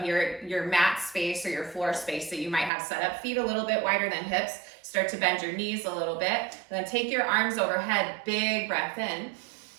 your mat space or your floor space that you might have set up. Feet a little bit wider than hips. Start to bend your knees a little bit. Then take your arms overhead, big breath in.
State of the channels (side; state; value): left; drops out; at 2.7 s